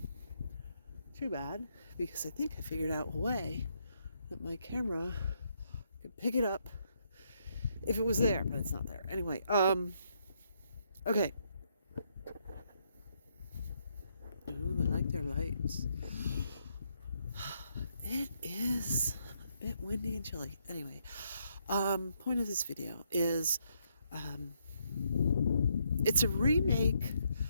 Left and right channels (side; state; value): both; inverted; correlation -0.75